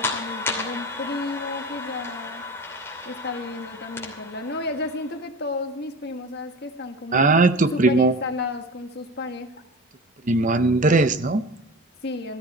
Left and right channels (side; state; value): both; normal; correlation 0.33